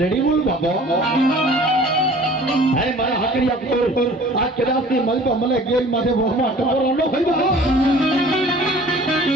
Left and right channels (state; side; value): normal; both; correlation 0.48